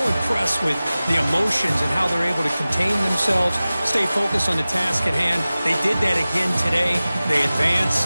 with the emotions and how they're able to contain themselves, stay focused on the task at hand. They did that again today. They advance.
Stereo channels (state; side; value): inverted; both; correlation -0.97